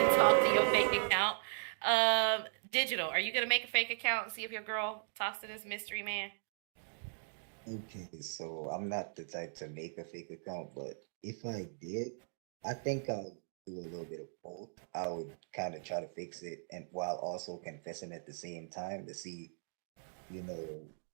talk to your fake account? Digital, are you gonna make a fake account and see if your girl talks to this mystery man? Okay, so I'm not the type to make a fake account, but if I did, I think I'll do a little bit of both. I would kind of try to fix it and while also confessing at the same time to see, you know,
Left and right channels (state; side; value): silent; left; digital silence